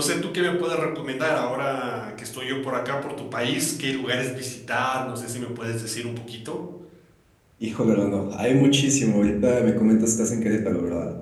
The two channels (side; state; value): both; identical; correlation 1.00